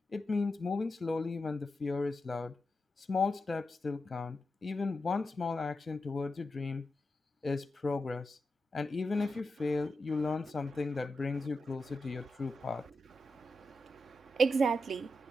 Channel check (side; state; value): both; normal; correlation 0.88